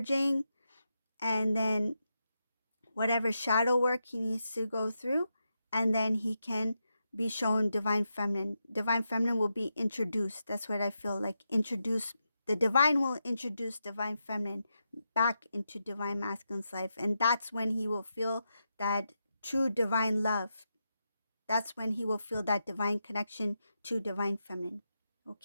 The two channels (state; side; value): inverted; both; correlation -0.86